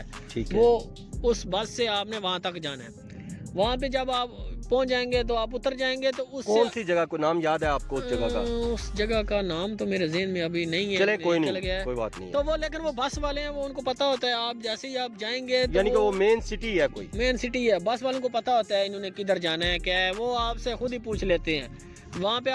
ठीक है। वो उस बस से आपने वहाँ तक जाना है। वहाँ पे जब आप पहुँच जाएंगे तो आप उतर जाएंगे तो उस कौन सी जगह को नाम याद है आपको उस जगह का? उस जगह का नाम तो मेरे ज़हन में अभी नहीं है। चले कोई चल नहीं, गया है। कोई बात नहीं है। तो वो लेकिन वो बस वाले हैं, वो उनको पता होता है आप जैसे ही आप जाएंगे तो यानी कि वो मेन सिटी है, कोई मेन सिटी है, बस वालों को पता होता है इन्होंने किधर जाना है, क्या है, वो आपसे खुद ही पूछ लेते हैं। वहाँ पे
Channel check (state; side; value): identical; both; correlation 1.00